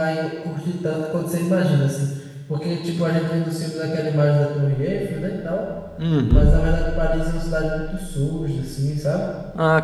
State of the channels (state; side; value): identical; both; correlation 1.00